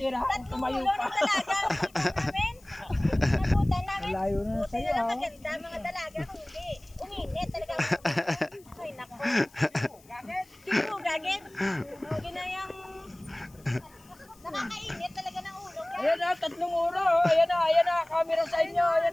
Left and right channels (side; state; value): left; noise; hiss, 27 dB below the sound